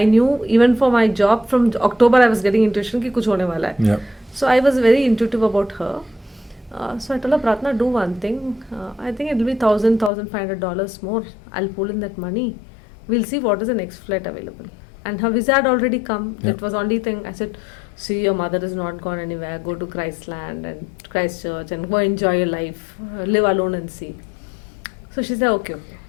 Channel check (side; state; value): right; drops out; at 10.1 s